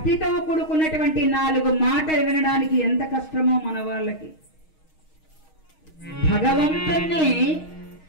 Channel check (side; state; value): right; late; 6.4 ms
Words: కూడుకున్నటువంటి 4 మాటలు వినడానికి ఎంత కష్టమో మన వాళ్ళకి. భగవంతుణ్ణి